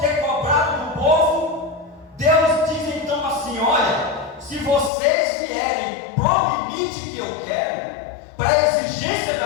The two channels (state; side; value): drops out; right; at 4.9 s